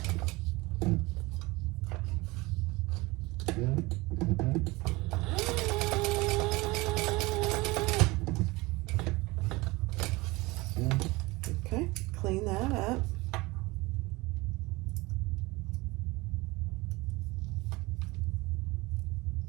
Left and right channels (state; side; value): quieter; left; 22.6 dB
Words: clean that up.